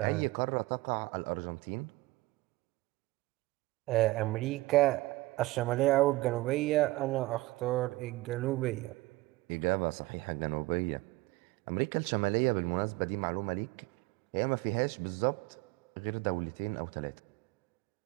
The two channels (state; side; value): quieter; left; 19.9 dB